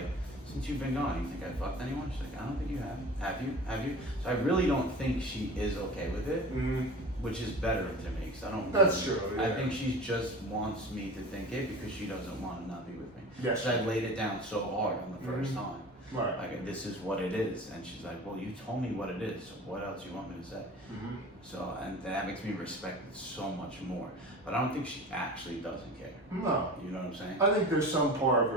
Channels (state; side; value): normal; both; correlation 0.36